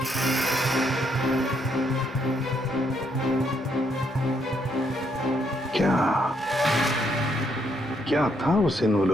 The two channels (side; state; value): both; normal; correlation 0.74